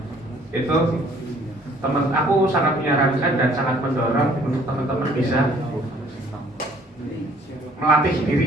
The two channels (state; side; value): normal; both; correlation 0.59